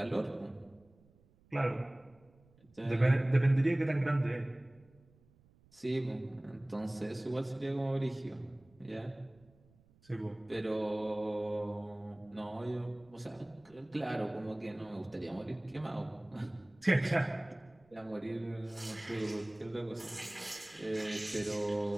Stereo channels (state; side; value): noise; right; rumble, 29 dB below the sound